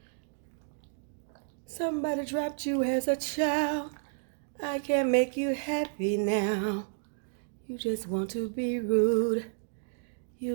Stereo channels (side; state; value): left; silent; digital silence